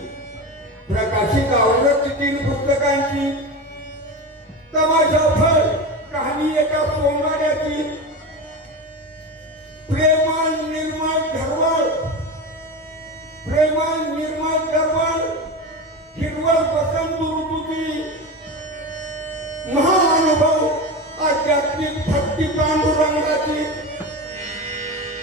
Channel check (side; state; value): both; normal; correlation 0.23